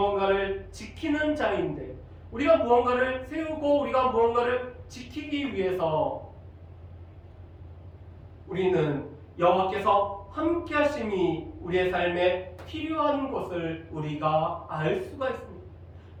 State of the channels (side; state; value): both; identical; correlation 1.00